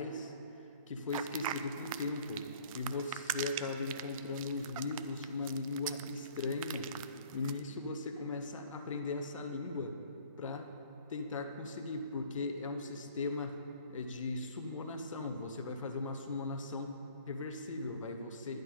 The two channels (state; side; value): inverted; both; correlation -0.52